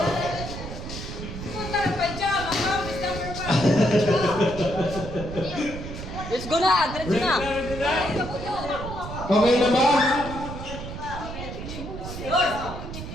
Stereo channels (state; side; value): noise; right; rumble, 9 dB below the sound